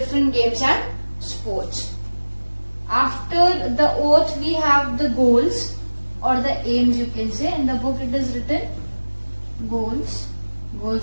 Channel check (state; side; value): inverted; both; correlation -1.00